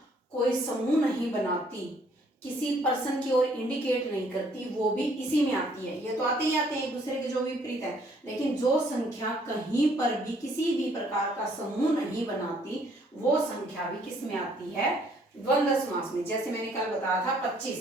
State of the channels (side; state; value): both; normal; correlation 0.64